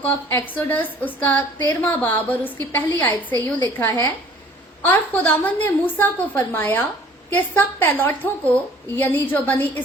ऑफ एक्सोडस, उसका 13वां बाब और उसकी पहली आयत से यूं लिखा है, और खुदावंद ने मूसा को फरमाया कि सब पैलौठों को, यानी जो बनी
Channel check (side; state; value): both; normal; correlation 0.52